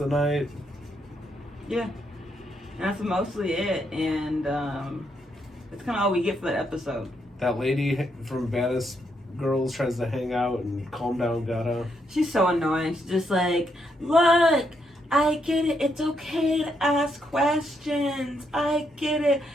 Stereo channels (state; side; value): normal; both; correlation 0.78